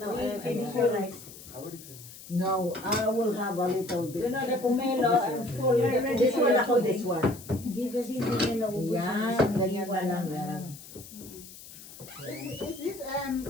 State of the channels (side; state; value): left; noise; hiss, 16 dB below the sound